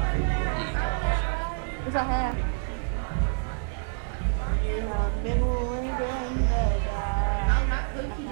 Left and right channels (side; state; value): left; silent; digital silence